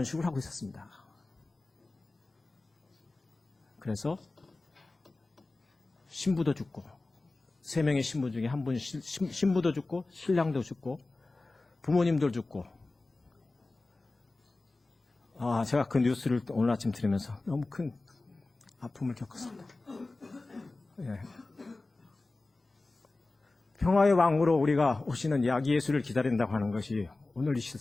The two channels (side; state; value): right; quieter; 3.2 dB